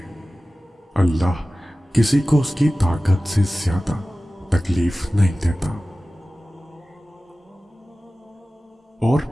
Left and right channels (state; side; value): normal; both; correlation 0.96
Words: اللہ کسی کو اس کی طاقت سے زیادہ تکلیف نہیں دیتا۔ اور